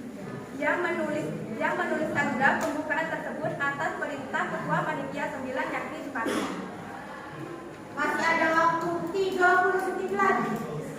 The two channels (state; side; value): identical; both; correlation 1.00